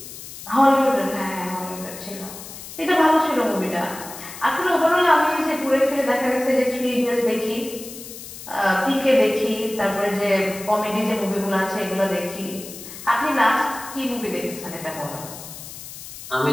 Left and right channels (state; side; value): noise; left; hiss, 13 dB below the sound